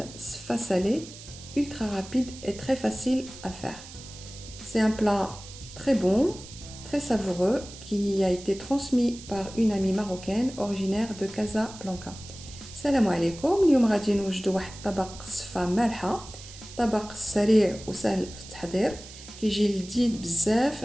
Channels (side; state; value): right; noise; hiss, 16 dB below the sound